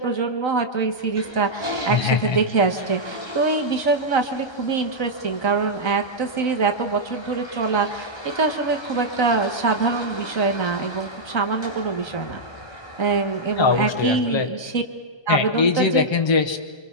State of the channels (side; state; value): right; late; 1.3 ms